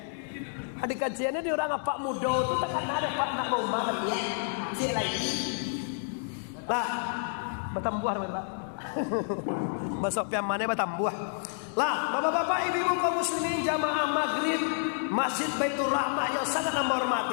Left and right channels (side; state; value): right; silent; digital silence